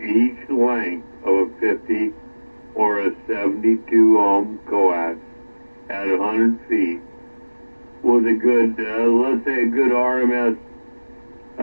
each length of a 50 or a 72 ohm coax at 100 feet with a good, let's say a good RMS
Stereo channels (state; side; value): inverted; both; correlation -1.00